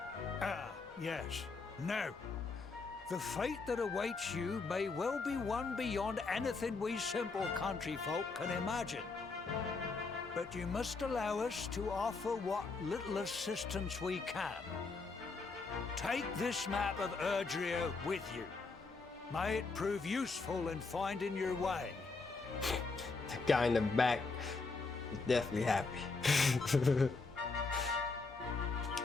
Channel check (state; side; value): quieter; right; 4.1 dB